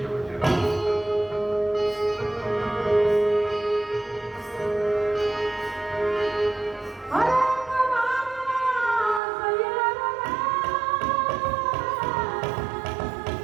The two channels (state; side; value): drops out; left; at 9.2 s